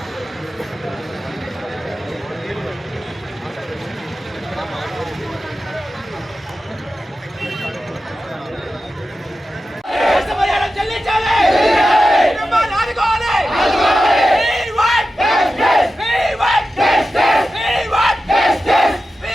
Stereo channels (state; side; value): normal; both; correlation 0.92